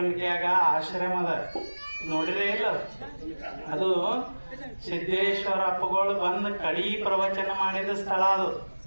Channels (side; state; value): both; inverted; correlation -1.00